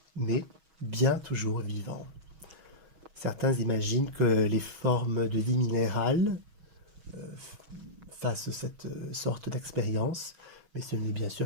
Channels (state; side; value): late; left; 6.3 ms